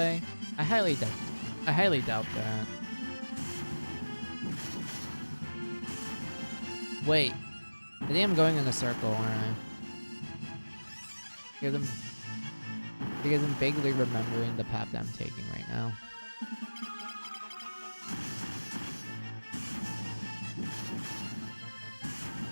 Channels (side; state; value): both; inverted; correlation -1.00